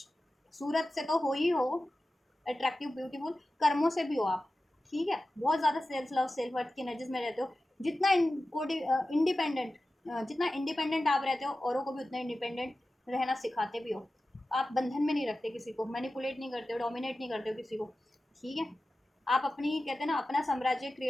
सूरत से तो हो ही हो अट्रैक्टिव ब्यूटीफुल, कर्मों से भी हो आप, ठीक है, बहुत ज़्यादा सेल्फ लव सेल्फ वर्थ की एनर्जीज में रहते हो, जितना इंडिपेंडेंट, जितना इंडिपेंडेंट आप रहते हो औरों को भी उतना इंडिपेंडेंट रहना सिखाते भी हो, आप बंधन में नहीं रखते किसी को, मैनिपुलेट नहीं करते हो, डोमिनेट नहीं करते हो किसी को, ठीक है, आप अपनी कहते हैं ना अपना साम्राज्य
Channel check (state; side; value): normal; both; correlation 0.94